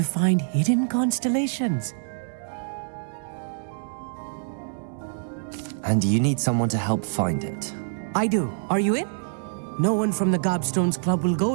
find hidden constellations. And you need someone to help find it. I do. Are you in? No one from the Gobstones Club will go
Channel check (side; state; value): left; silent; digital silence